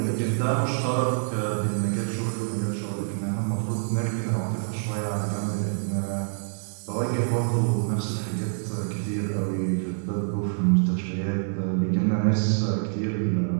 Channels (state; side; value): silent; left; 61 dB below the other